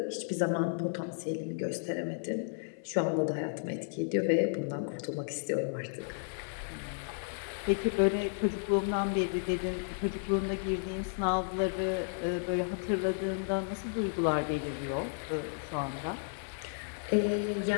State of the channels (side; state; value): right; silent; 56 dB below the other